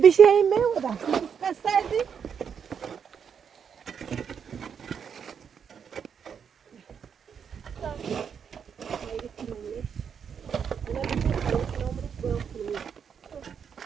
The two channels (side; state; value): left; quieter; 7.2 dB